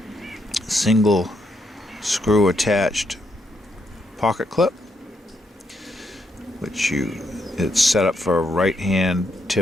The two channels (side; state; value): both; normal; correlation 0.78